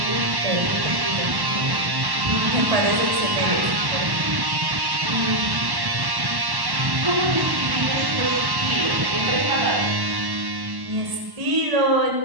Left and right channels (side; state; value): left; late; 1.1 ms